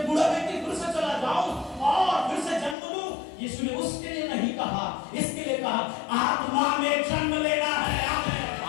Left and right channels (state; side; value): drops out; right; at 2.8 s